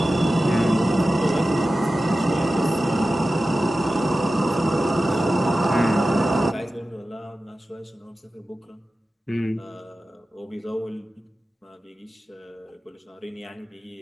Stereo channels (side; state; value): both; normal; correlation 0.94